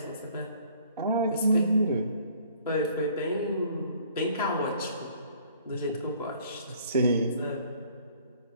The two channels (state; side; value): inverted; both; correlation -0.57